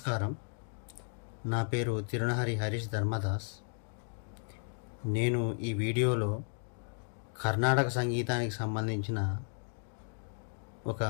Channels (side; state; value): right; silent; 55 dB below the other